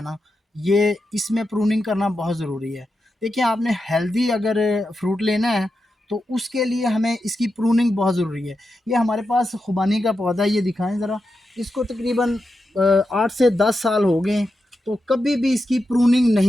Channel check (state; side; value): normal; both; correlation 0.88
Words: ना, ये इसमें प्रूनिंग करना बहुत ज़रूरी है। देखिए, आपने हेल्दी अगर फ्रूट लेना है, तो उसके लिए हमें इसकी प्रूनिंग बहुत ज़रूरी है। ये हमारे पास खुबानी का पौधा है, ये दिखाएँ ज़रा। इसको तकरीबन 8 से 10 साल हो गए, तो कभी भी इसकी प्रूनिंग